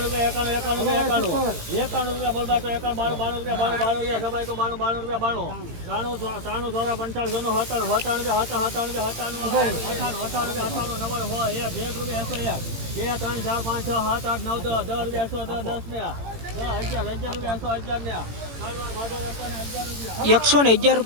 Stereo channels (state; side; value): late; left; 18 ms